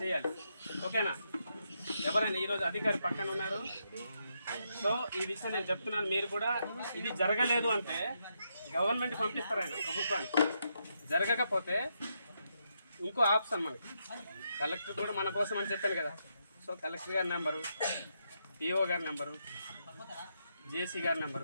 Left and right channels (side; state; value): both; inverted; correlation -0.81